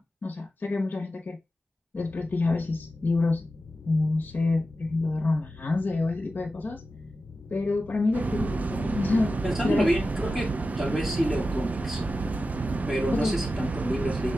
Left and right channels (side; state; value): both; normal; correlation 0.92